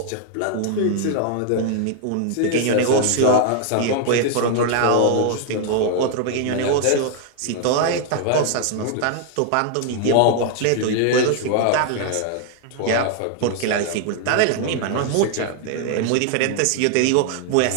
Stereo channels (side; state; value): both; different; correlation 0.00